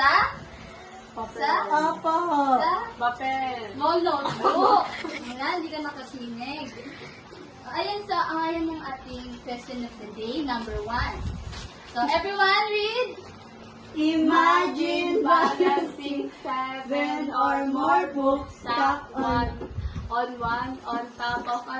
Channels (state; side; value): identical; both; correlation 1.00